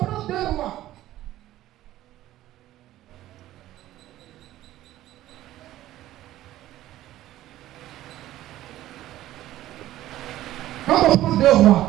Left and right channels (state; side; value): quieter; left; 14.5 dB